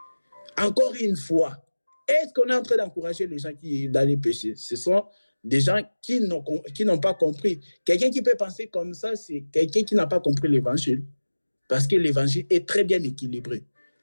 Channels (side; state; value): both; inverted; correlation -1.00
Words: Encore une fois, est-ce qu'on est en train d'encourager les gens qui dans les péchés? Ce sont des gens qui n'ont pas compris. Quelqu'un qui peut penser comme ça, c'est quelqu'un qui n'a pas compris l'évangile. Parce que l'évangile est très bien équilibré.